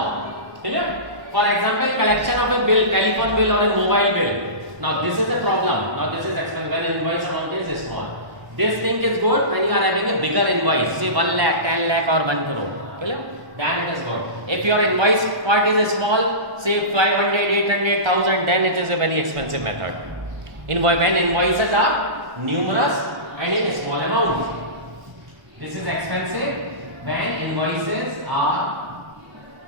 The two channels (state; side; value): late; left; 1.0 ms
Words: Clear? For example, collection of a bill, telephone bill or a mobile bill. Now this is a problem. Now this is expensive when invoice amount is small. This thing is good when you are having a bigger invoice, say 1 lakh, 10 lakh or 1 crore. Clear? Then it is good. If your invoice part is small, say 500, 800, 1000, then it is a very expensive method. When invoices are numerous and in a small amount. This is expensive when invoices are